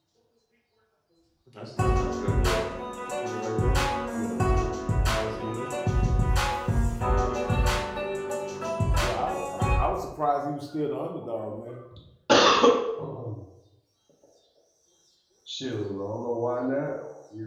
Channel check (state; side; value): identical; both; correlation 1.00